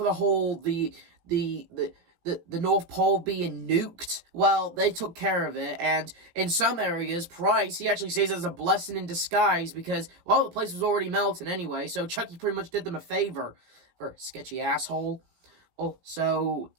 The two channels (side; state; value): left; late; 17 ms